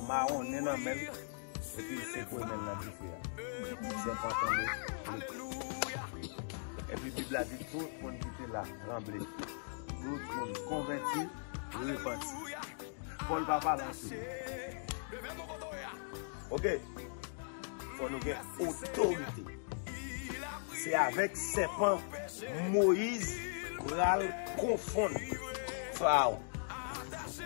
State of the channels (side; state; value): right; silent; digital silence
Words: marron, dans le mel, et puis c'est pour le mel dans le feu. Serpent tombé. Et puis la Bible a dit tout le monde qui était là, tremblé. Tout le monde converti, repenti. Paul va pas lancer. Ok? Il faut nous avoir autorité. C'est avec serpent Moïse va confondre Pharaon.